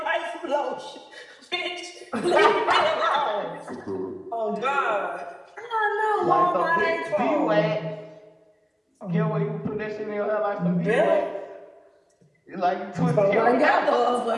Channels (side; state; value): both; identical; correlation 1.00